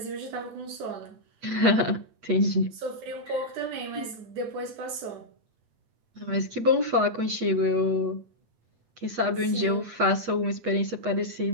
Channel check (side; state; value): left; late; 8.1 ms